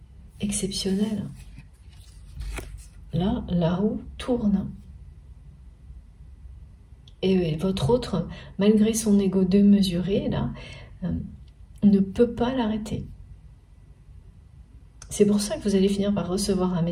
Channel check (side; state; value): both; identical; correlation 1.00